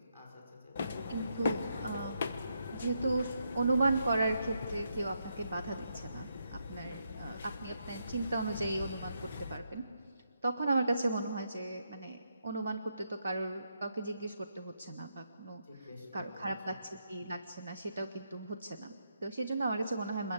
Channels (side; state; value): both; inverted; correlation -0.80